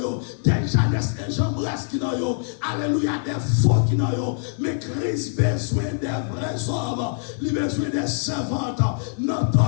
yo, des Janès et Jean-Bresse qui n'ont yo, alléluia, des faux qui n'ont yo. Mais Christ besoin des vrais hommes, il besoin des servantes,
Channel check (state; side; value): silent; right; digital silence